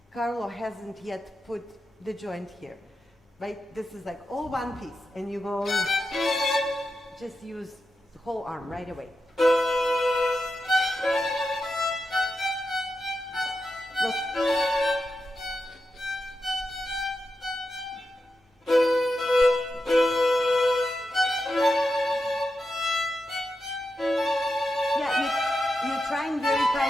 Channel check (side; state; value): both; normal; correlation 0.88